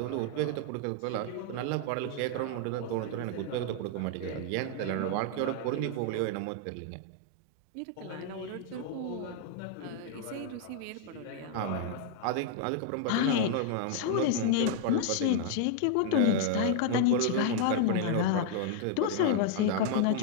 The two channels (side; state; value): both; different; correlation -0.01